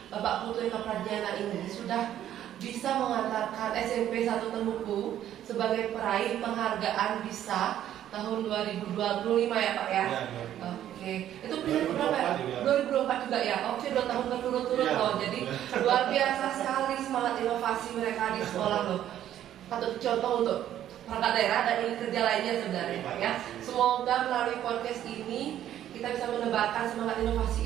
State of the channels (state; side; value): quieter; left; 11.4 dB